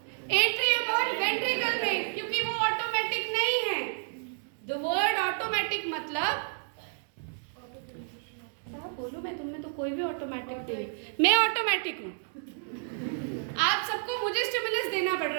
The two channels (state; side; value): silent; left; digital silence